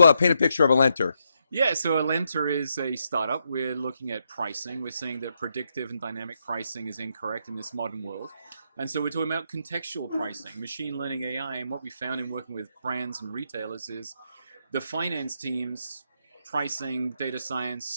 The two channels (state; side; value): inverted; both; correlation -0.80